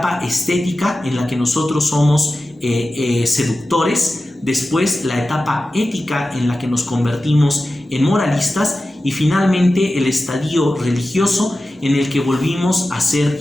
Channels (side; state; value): both; normal; correlation 0.94